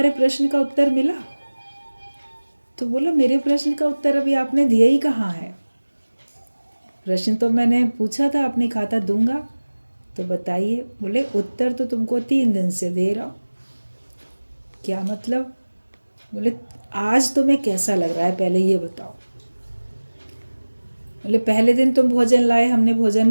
प्रश्न का उत्तर मिला? तो बोला मेरे प्रश्न का उत्तर अभी आपने दिया ही कहाँ है, प्रश्न तो मैंने पूछा था, आपने कहा था दूंगा, तो बताइए। बोले उत्तर तो तुमको 3 दिन से दे रहा हूँ। क्या मतलब? बोले आज तुम्हें कैसा लग रहा है पहले ये बताओ। बोले पहले दिन तुम भोजन लाए, हमने भोजन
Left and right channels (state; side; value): inverted; both; correlation -1.00